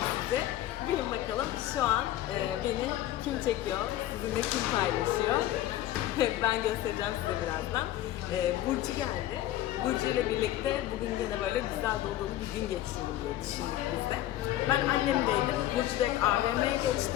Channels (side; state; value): right; quieter; 13.7 dB